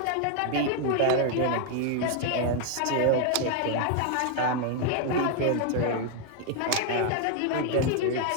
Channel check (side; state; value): both; different; correlation 0.00